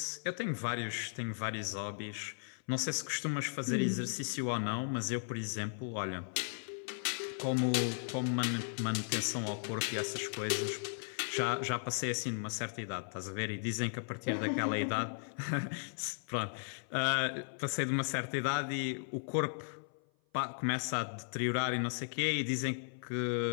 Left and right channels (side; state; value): right; silent; 54 dB below the other